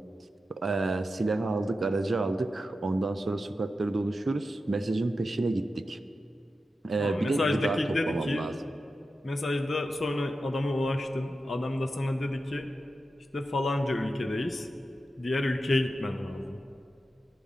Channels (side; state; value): both; normal; correlation 0.91